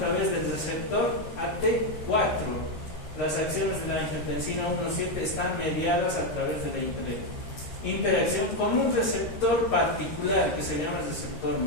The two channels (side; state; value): right; late; 13 ms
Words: del receptor AT4. Las acciones de la angiotensina 1,7 están mediadas a través de la interacción con un receptor particular que se llama receptor